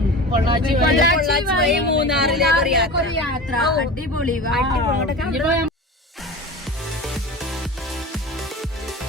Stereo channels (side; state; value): both; normal; correlation 0.32